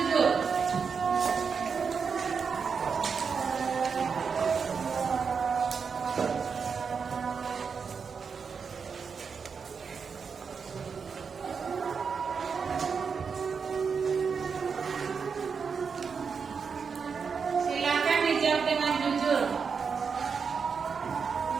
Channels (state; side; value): quieter; left; 5.8 dB